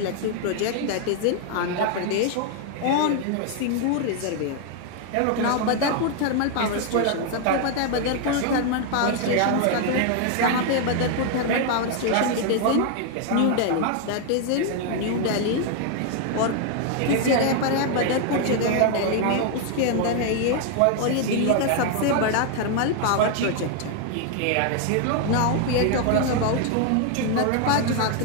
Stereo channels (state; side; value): different; both; correlation 0.00